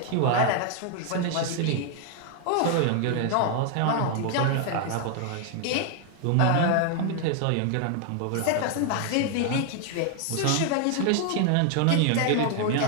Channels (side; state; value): both; different; correlation 0.00